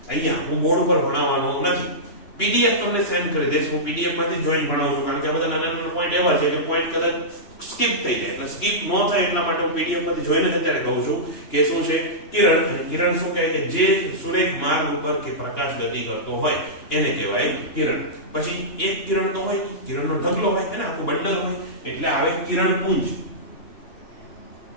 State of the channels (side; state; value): right; late; 2.9 ms